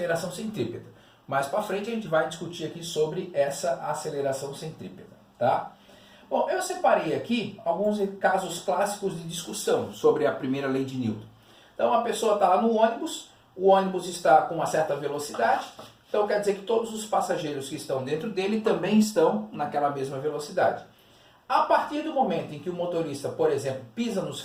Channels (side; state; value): both; identical; correlation 1.00